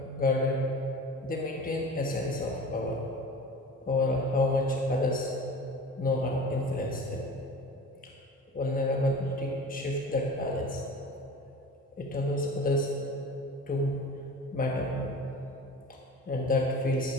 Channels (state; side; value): normal; both; correlation 0.38